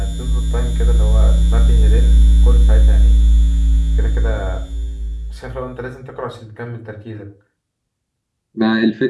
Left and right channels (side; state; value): both; identical; correlation 1.00